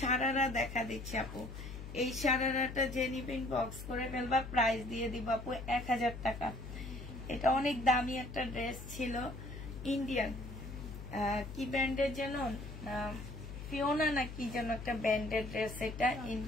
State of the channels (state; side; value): noise; left; hum, 10 dB below the sound